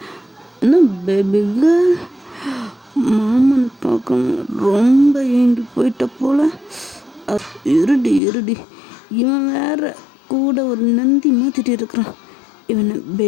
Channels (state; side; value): drops out; right; at 8.2 s